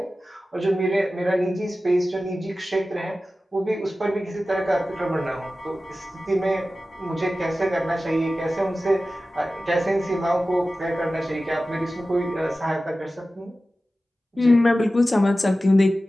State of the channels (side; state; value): both; normal; correlation 0.95